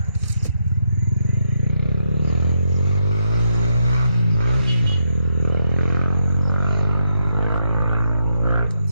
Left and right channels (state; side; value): inverted; both; correlation -0.80